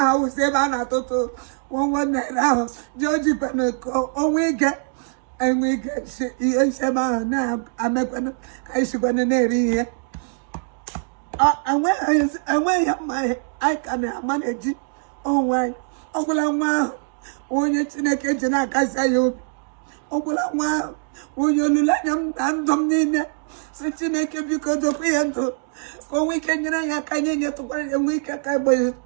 Evana Toto, 1 night out. Georgie Panaco, oh, we get, and we get Sema now. I'm a pen, I should be an area. And where my I can manage it. Oh, why? Uncle, when it's in a kitchen, I can say you. Uncle, when you let them and dominate, such a naked because of Pianto. For we can get to work a week at Cabo.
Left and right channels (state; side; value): silent; left; 64 dB below the other